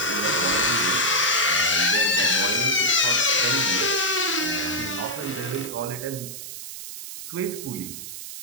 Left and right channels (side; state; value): right; noise; hiss, 10 dB below the sound